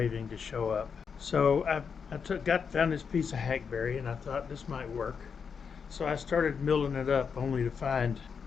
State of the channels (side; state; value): right; quieter; 6.2 dB